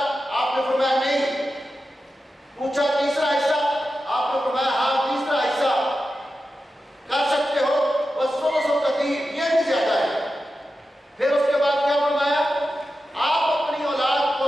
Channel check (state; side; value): normal; both; correlation 0.91